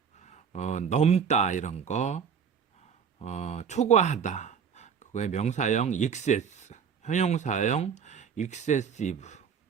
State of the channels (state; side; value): quieter; left; 7.0 dB